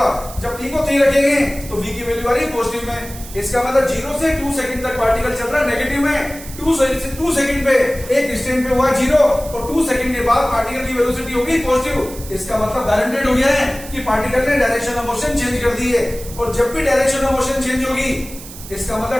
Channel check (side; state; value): right; noise; hiss, 15 dB below the sound